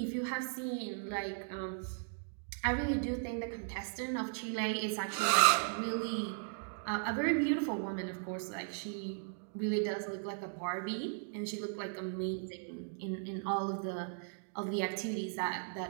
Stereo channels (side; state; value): left; silent; digital silence